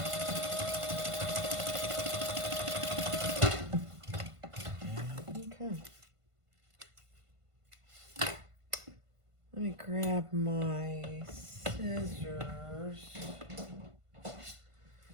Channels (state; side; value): late; left; 1.5 ms